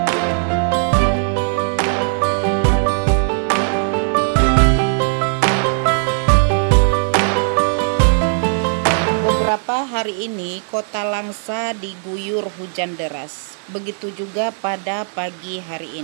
Beberapa hari ini Kota Langsa diguyur hujan deras. Begitu juga pada pagi hari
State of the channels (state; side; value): silent; left; digital silence